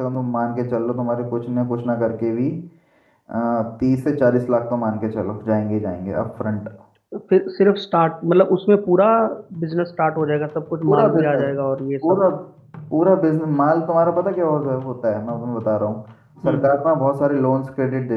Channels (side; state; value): both; identical; correlation 1.00